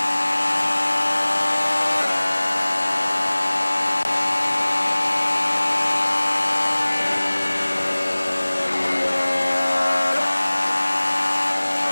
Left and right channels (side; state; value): both; inverted; correlation -1.00